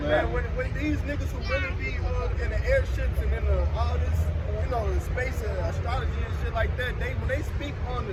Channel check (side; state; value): both; identical; correlation 1.00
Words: man. when these niggas who really be in the airships and in all this, you know, the space and astrology and shit like that, when they speak on the